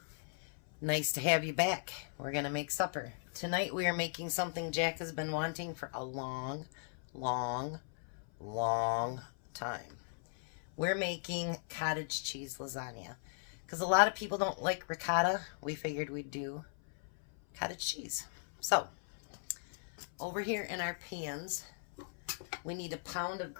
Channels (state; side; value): silent; right; 53 dB below the other